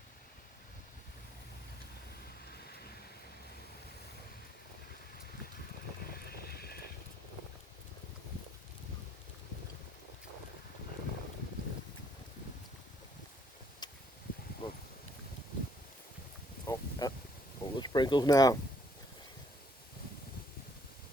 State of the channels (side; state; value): both; normal; correlation 0.66